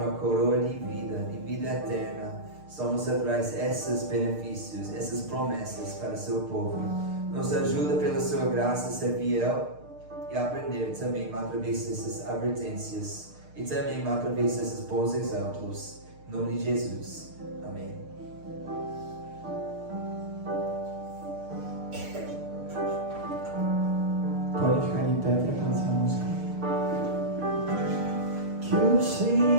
coroa de vida eterna. Somos atrás desses benefícios, essas promessas para o seu povo. Nos ajuda pela sua graça a ser fiel e aprender também através dessas advertências e também através desses bons exemplos. Em nome de Jesus. Amém. Pode ficar em pé para cantar essa música. Que o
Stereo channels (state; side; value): late; left; 6.6 ms